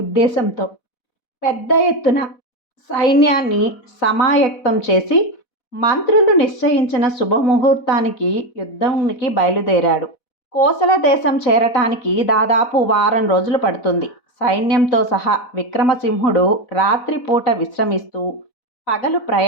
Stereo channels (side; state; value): right; late; 4.1 ms